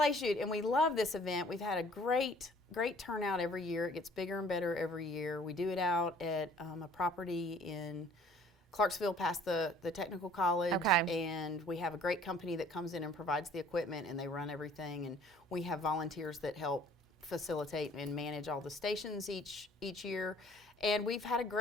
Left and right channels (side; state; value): both; normal; correlation 0.55